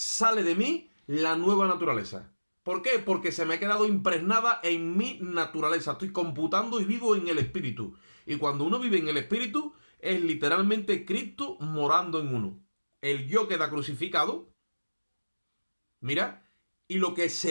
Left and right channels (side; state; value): both; inverted; correlation -1.00